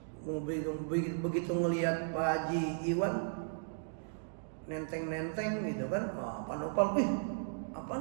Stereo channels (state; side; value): silent; left; digital silence